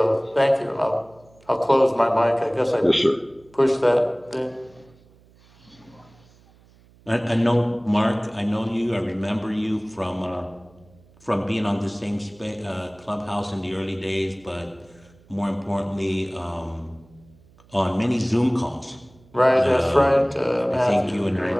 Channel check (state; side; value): noise; right; hum, 28 dB below the sound